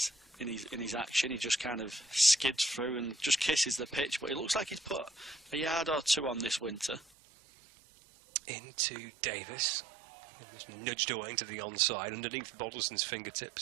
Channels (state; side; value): drops out; left; at 7.1 s